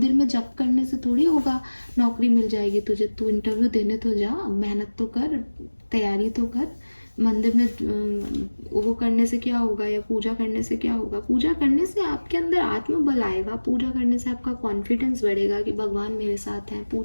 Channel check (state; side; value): inverted; both; correlation -1.00